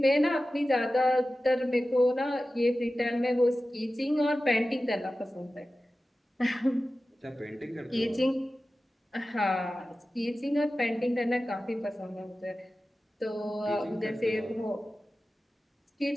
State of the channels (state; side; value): normal; both; correlation 0.95